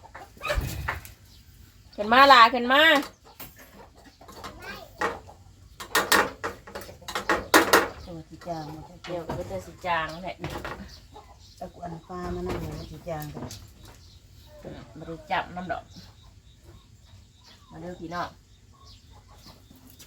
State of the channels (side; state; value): both; identical; correlation 1.00